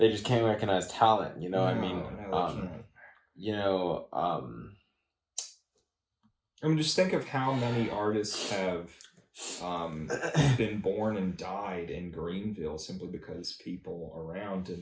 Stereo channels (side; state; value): both; identical; correlation 1.00